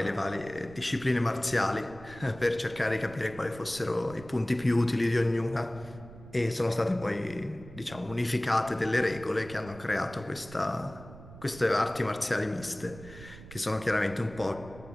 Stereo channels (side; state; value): right; noise; rumble, 17 dB below the sound